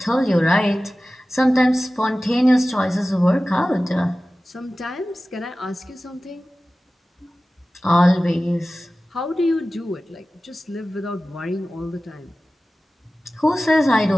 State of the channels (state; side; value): normal; both; correlation 0.96